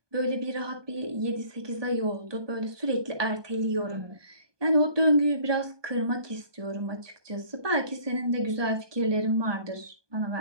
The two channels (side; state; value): left; late; 1.2 ms